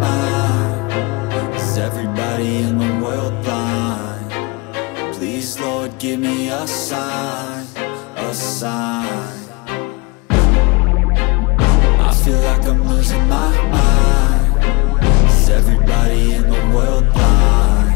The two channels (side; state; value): right; quieter; 26.9 dB